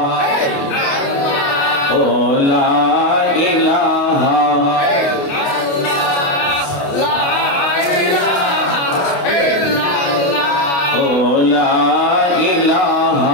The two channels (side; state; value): right; late; 29 ms